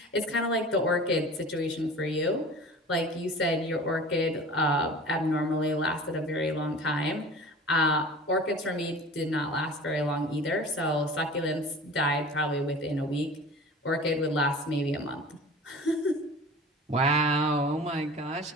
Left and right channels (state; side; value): normal; both; correlation 0.40